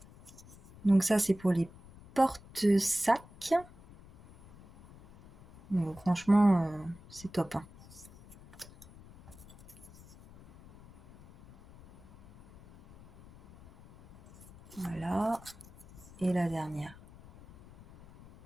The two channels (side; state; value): left; noise; rumble, 22 dB below the sound